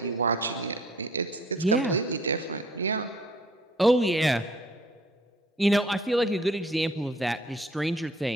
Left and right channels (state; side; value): normal; both; correlation 0.56